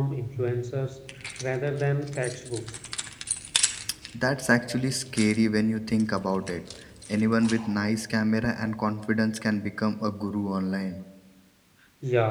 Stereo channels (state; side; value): identical; both; correlation 1.00